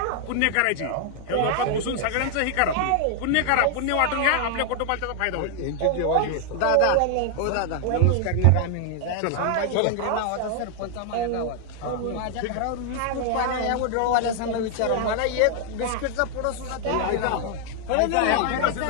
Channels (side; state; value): both; different; correlation 0.00